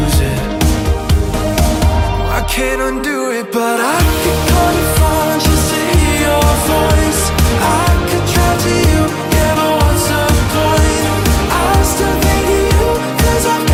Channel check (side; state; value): both; identical; correlation 1.00